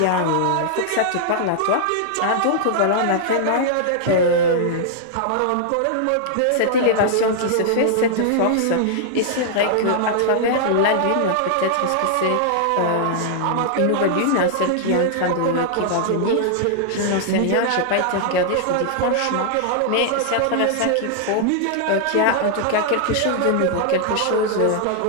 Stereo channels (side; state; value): both; different; correlation -0.01